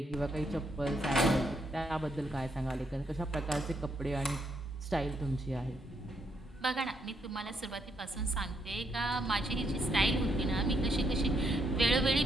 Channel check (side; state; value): both; normal; correlation 0.76